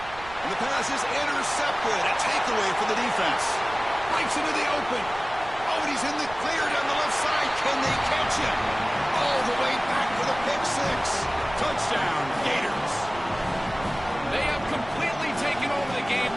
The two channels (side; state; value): right; noise; rumble, 17 dB below the sound